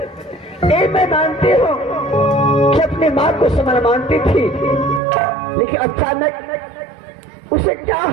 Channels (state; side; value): drops out; left; at 5.0 s